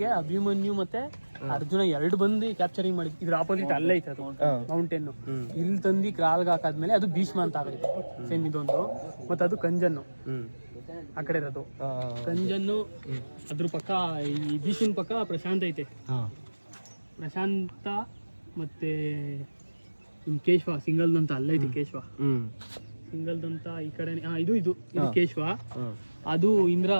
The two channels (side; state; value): both; inverted; correlation -1.00